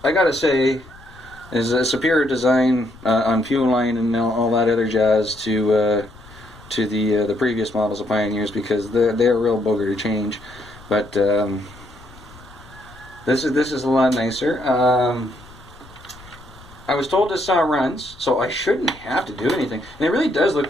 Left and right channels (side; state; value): left; noise; rumble, 22 dB below the sound